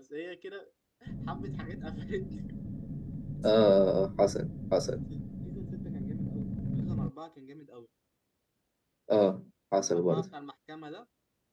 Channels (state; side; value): identical; both; correlation 1.00